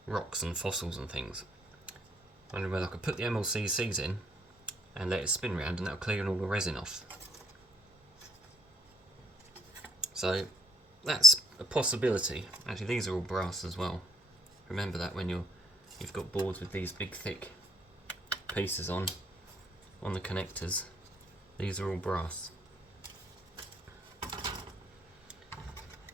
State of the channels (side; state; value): both; normal; correlation 0.70